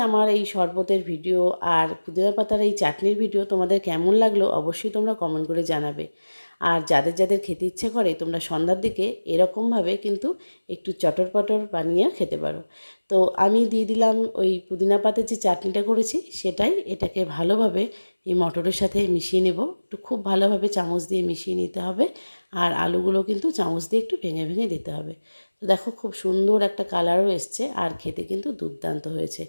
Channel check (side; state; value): both; inverted; correlation -1.00